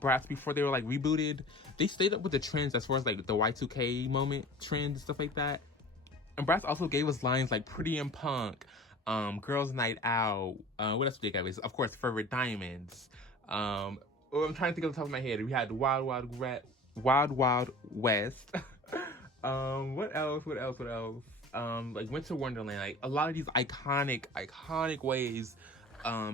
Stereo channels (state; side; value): normal; both; correlation 0.41